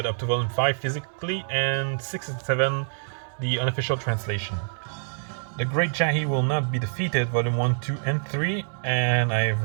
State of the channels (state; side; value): silent; left; digital silence